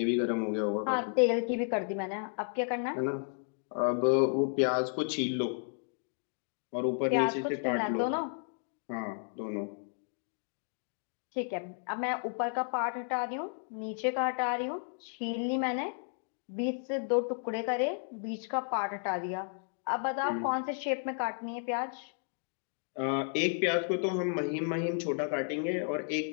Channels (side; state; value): right; silent; 56 dB below the other